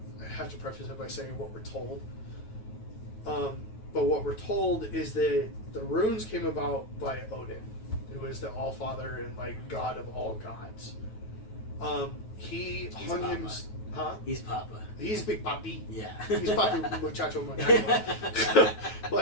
have to preface it by saying what we're told. But what we're told is that the runes came about by Odin, who is the Allfather and like god of all gods. He hung him. Huh? He's Papa. He's Big Papi. Yeah. He's Papi Muchacho Muchacho.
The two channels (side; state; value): right; late; 9.3 ms